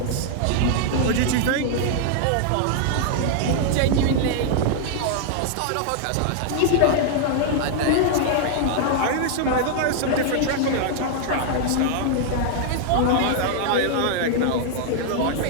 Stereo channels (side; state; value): both; different; correlation -0.01